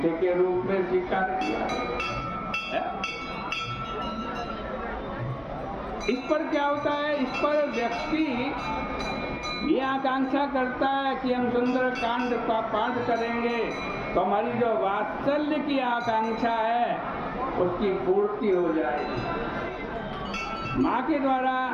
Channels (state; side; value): identical; both; correlation 1.00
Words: के रूप में स्वीकार किया। इस पर क्या होता है, इस पर व्यक्ति ये आकांक्षा करता है कि हम सुंदरकांड का पाठ करेंगे तो हमारी जो वात्सल्य की आकांक्षा है उसकी पूर्ति हो जाएगी। माँ के द्वारा